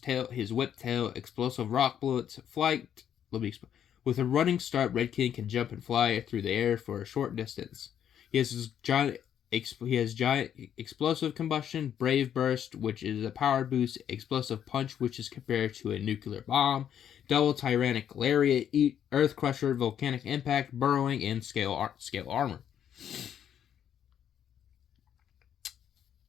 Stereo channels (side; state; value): right; quieter; 9.4 dB